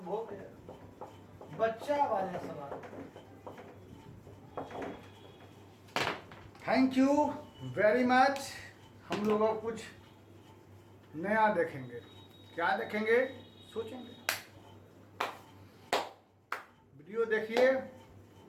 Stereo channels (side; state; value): both; identical; correlation 1.00